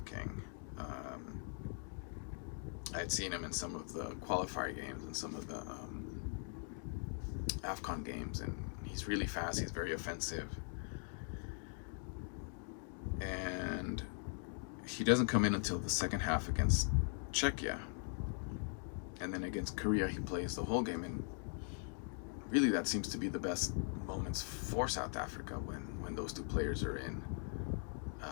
I had seen him in some of the qualifier games and some of the AFCON games, and he's really fast. He's very offensive, and he doesn't come in until the second half against Czechia, and then against Korea he plays the whole game. And really, that seems to be the best moments for South Africa when those two players are in.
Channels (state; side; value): silent; right; 50 dB below the other